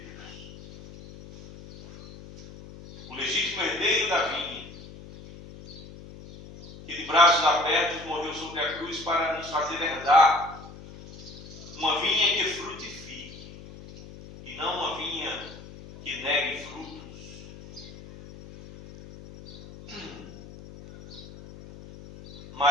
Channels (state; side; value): noise; left; hum, 16 dB below the sound